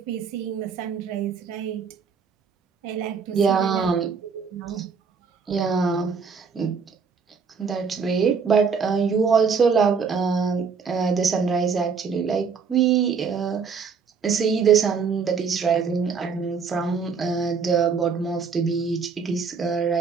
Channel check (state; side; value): quieter; left; 5.7 dB